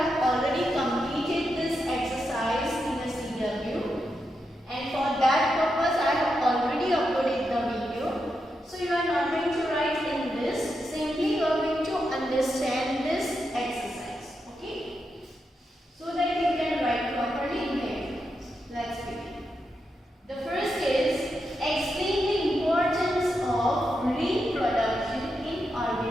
already completed this exercise in the CW, and for that purpose I have already uploaded the video. So you are not going to write in this. Simply you are going to understand this exercise, okay? So that you can write properly in the exams. Let's begin. The first is explain the importance of reproduction in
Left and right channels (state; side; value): normal; both; correlation 0.85